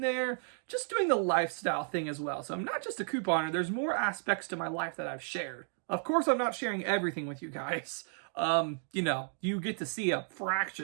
there, just doing the lifestyle thing as well. So I'm not just a couponer. There's more aspects to my life that I've shared. Of course, I'm not sharing everything with you guys. You know, you get to see a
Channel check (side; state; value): left; silent; 56 dB below the other